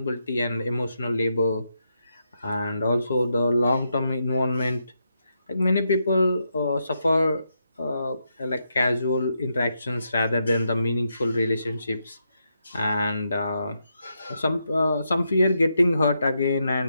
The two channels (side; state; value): both; inverted; correlation -0.82